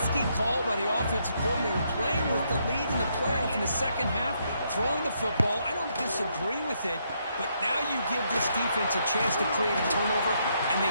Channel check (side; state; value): both; inverted; correlation -0.75